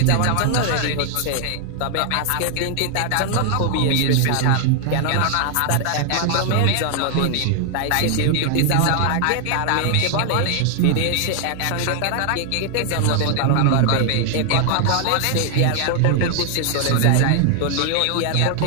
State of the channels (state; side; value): different; both; correlation 0.00